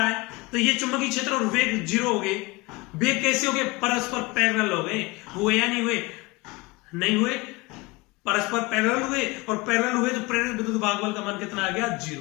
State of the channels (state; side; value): quieter; right; 23.8 dB